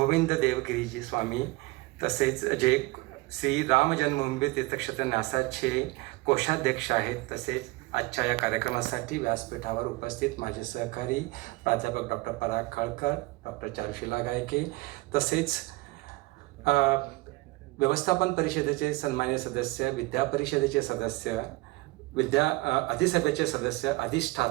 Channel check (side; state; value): left; quieter; 22.1 dB